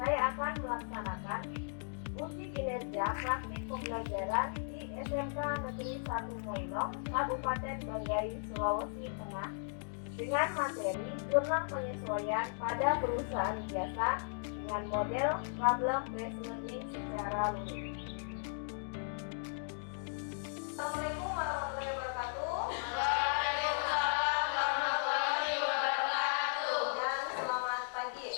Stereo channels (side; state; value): right; silent; digital silence